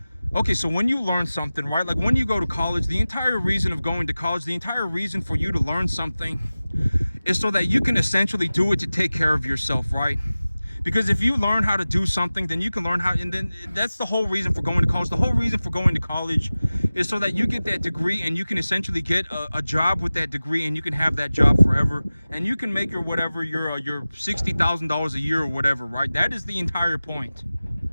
okay, so when you learn something, right? Like when you go to college, the entire reason of going to college, the entire reason for you to learn something is so that you can essentially do it to take care of yourself, right? Because if you learn how to do something, then you can learn how, and then that's the whole reason for going to college. The whole reason for going to college is so that you get that degree and you can essentially get a job with that degree, and you can have that job forever, and you can make your $60,000 a year or whatever, right? That is the entire point,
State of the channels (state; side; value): inverted; both; correlation -0.97